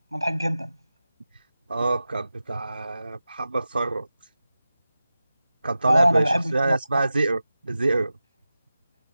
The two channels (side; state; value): both; inverted; correlation -0.94